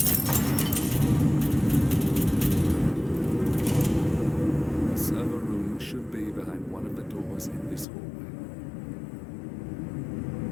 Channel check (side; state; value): right; drops out; at 7.9 s